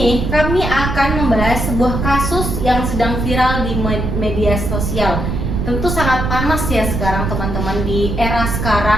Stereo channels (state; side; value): noise; right; rumble, 2 dB below the sound